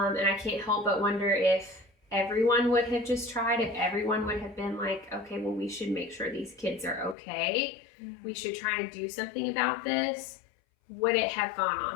I can't help but wonder if everyone would have just tried, if everyone would have been like, okay, well, we should make sure these kids are okay. We should try and do something about this. Would it have gone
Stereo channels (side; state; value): right; drops out; at 7.2 s